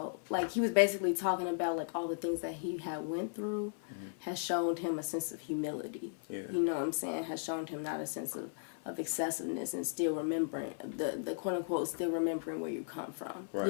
like he was basically talking about like all the things that he had went through has shown him a sense of humility. Yeah. You know what I'm saying? Has shown him not a sense of excessiveness and still remembering the quote unquote still remembering where you come from.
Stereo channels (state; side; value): silent; right; 54 dB below the other